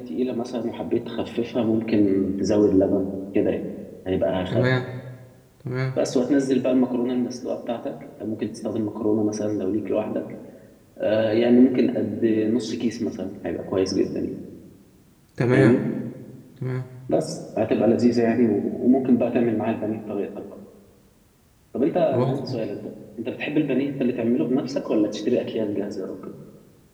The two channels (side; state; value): both; identical; correlation 1.00